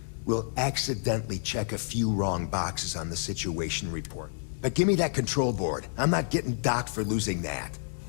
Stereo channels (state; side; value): silent; right; digital silence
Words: We'll accidentally check a few wrong boxes on the situation report. But give me that Control Board. I'm not getting docked for losing that.